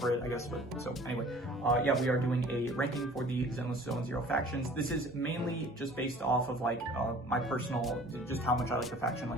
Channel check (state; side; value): normal; both; correlation 0.49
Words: it, I guess. But so anyway, yeah, we are doing a ranking for the Zenless Zone Zero factions. This is mainly just based off of like my personal, just how much I like the faction.